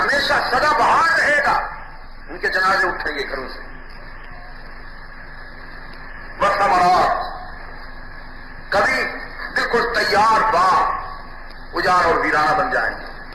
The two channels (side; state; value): both; identical; correlation 1.00